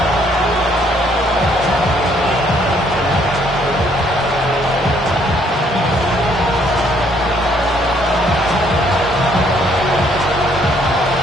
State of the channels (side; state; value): both; normal; correlation 0.66